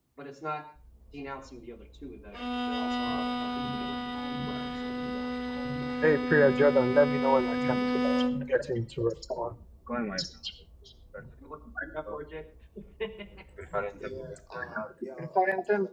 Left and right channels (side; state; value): both; identical; correlation 1.00